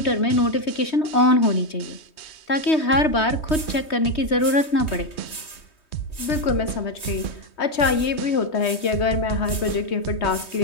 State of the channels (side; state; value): right; late; 3.2 ms